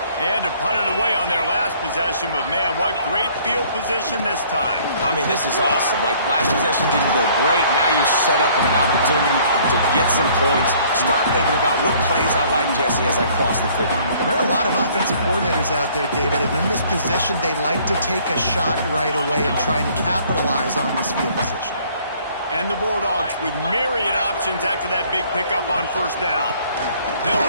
They had to punt it away on their last possession, but man, what great field position this time. I mean, this is awesome. Like, last possession didn't go great. Now you're set up in an opportunity to get some points. Start thinking about what plays I like, Jesse, as I cross the 50. There are a lot of offensive coordinators out there, David, and in this position, they like to take a shot right away and try and capitalize on this field position. And the Bulldogs with myriad options after that big pickup on 1st down.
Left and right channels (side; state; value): both; inverted; correlation -0.58